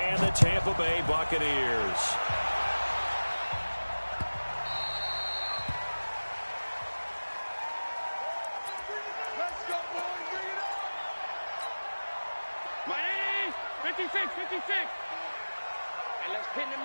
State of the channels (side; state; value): both; inverted; correlation -1.00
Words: the Tampa Bay Buccaneers. Miami, 56. And let's pin the